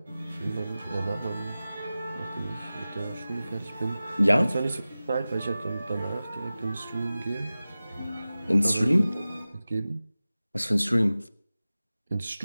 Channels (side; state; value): both; inverted; correlation -0.96